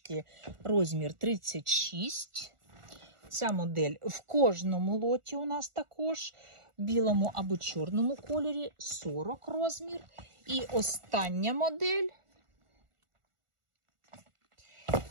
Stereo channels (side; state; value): left; late; 1.4 ms